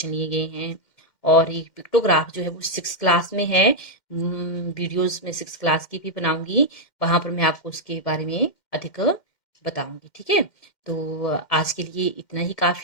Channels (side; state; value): right; late; 2.1 ms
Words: लिए गए हैं। और ये पिक्टोग्राफ जो है वो 6th क्लास में है। वीडियोस में 6th क्लास की भी बनाऊंगी, वहां पर मैं आपको उसके बारे में अधिक बताऊंगी, ठीक है। तो आज के लिए इतना ही